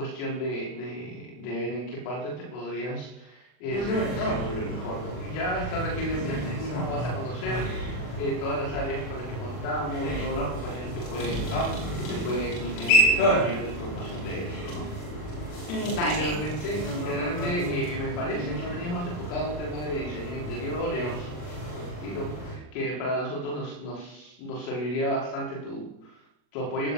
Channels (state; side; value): late; right; 40 ms